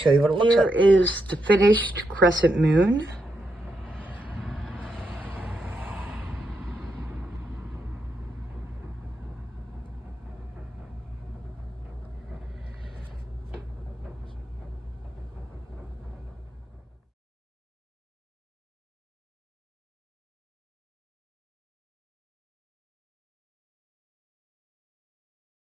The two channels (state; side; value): normal; both; correlation 0.82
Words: you what it looks like. Here is the finished crescent moon.